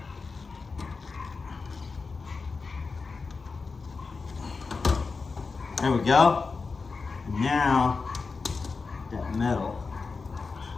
There we go. Now, that metal.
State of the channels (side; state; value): right; quieter; 4.5 dB